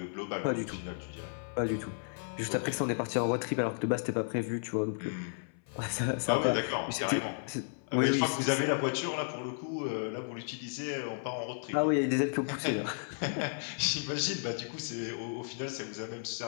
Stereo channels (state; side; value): silent; right; 56 dB below the other